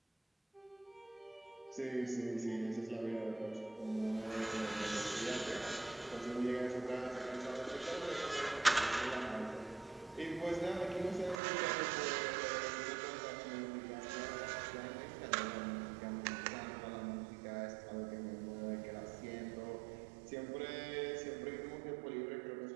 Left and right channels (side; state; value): left; drops out; at 11.4 s